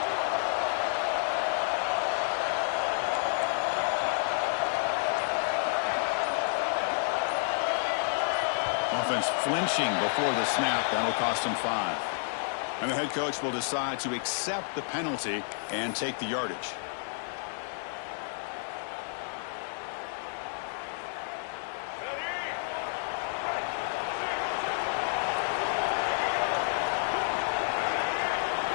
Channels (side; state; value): right; silent; digital silence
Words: Offense flinching before the snap. That'll cost them 5. And the head coach will decide to accept the penalty and take the yardage.